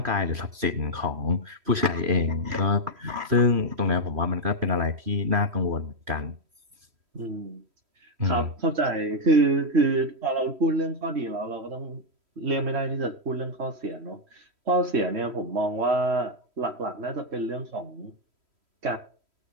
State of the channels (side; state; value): left; late; 3.1 ms